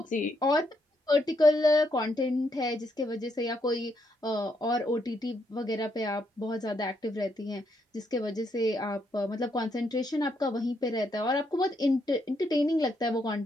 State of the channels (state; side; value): normal; both; correlation 0.77